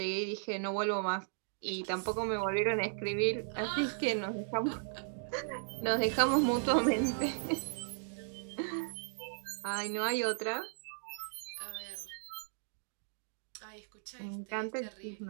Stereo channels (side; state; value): left; silent; digital silence